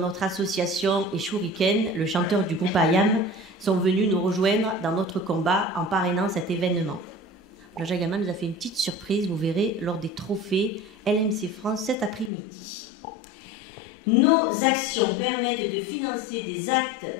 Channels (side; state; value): right; drops out; at 12.3 s